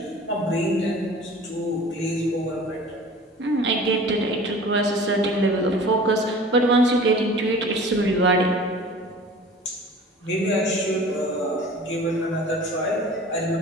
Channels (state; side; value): normal; both; correlation 0.43